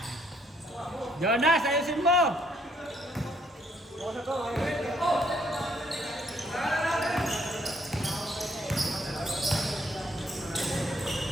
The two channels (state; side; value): normal; both; correlation 0.68